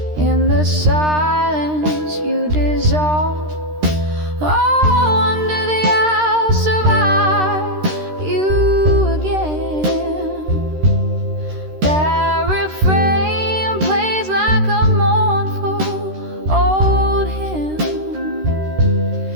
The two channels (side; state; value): left; late; 13 ms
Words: in the silence you dissolve.